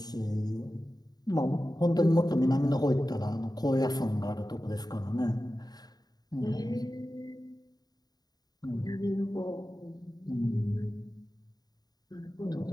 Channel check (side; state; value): right; late; 0.19 ms